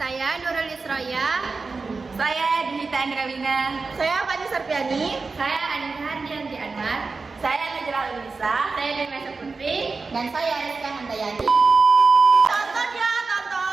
Saya Nurul Isroya. Saya Dinita Andrawina. Saya Fani Sarpiani. Saya Anissa Hardianti Anwar. Saya Najla Ulisa. Saya Dewi Putri. Dan saya Rizka Handayani. Tonton ya,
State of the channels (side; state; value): left; quieter; 4.2 dB